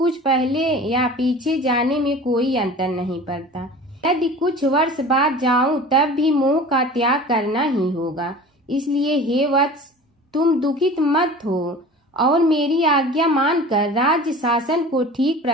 पहले या पीछे जाने में कोई अंतर नहीं पड़ता। यदि कुछ वर्ष बाद जाऊं तब भी मोह का त्याग करना ही होगा। इसलिए हे वत्स, तुम दुखित मत हो और मेरी आज्ञा मानकर राज्य शासन को ठीक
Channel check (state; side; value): normal; both; correlation 0.39